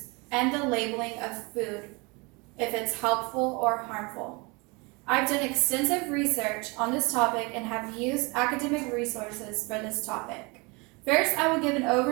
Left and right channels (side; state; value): left; quieter; 28.0 dB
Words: and the labeling of food, if it's helpful or harmful. I've done extensive research on this topic and have used academic resources for this topic. First, I will give an